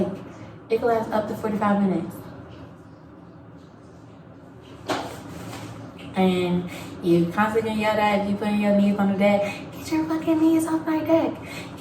could last up to 45 minutes. And you constantly yell at, you putting your knees on the deck, get your fucking knees off my deck.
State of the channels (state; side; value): identical; both; correlation 1.00